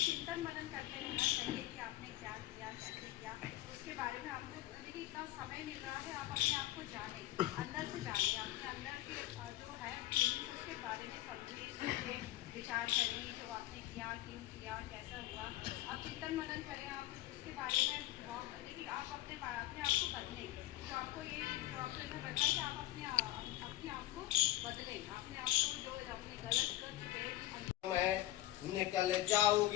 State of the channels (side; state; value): right; quieter; 15.8 dB